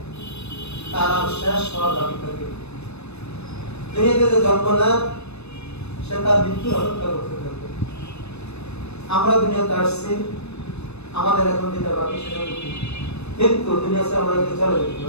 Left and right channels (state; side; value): late; right; 0.80 ms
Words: তার আর শেষ হওয়ার দাবি থাকে। দুনিয়াতে যে জন্ম নেয় সে তার মৃত্যুর অপেক্ষা করতে থাকে। আমরা দুনিয়াতে আসছি, আমাদের এখন যেটা বাকি সেটা কিন্তু দুনিয়াতে আমাদেরকে চলে যেতে